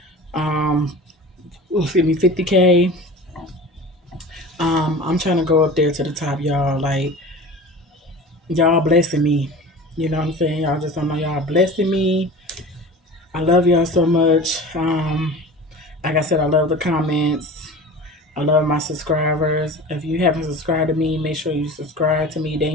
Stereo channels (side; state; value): both; normal; correlation 0.37